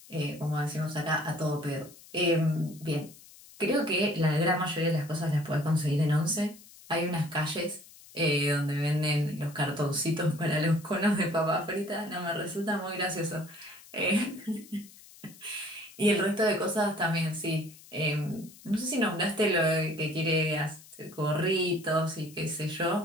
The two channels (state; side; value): noise; left; hiss, 21 dB below the sound